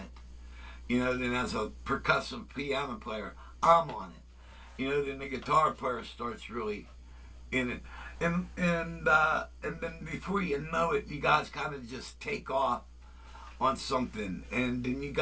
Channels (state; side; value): identical; both; correlation 1.00